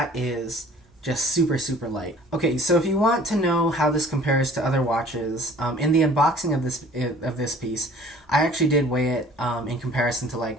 is just super, super light. Okay, so if you want to know how this compares to other watches, in the unboxing of this piece, I actually did weigh it in comparison to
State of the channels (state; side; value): normal; both; correlation 0.51